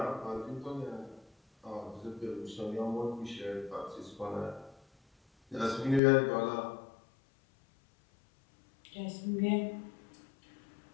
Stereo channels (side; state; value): right; drops out; at 6.0 s